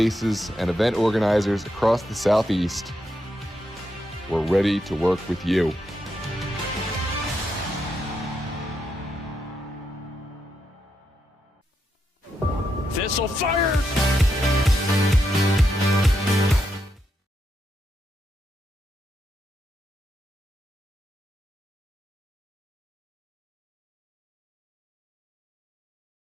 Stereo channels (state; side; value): normal; both; correlation 0.82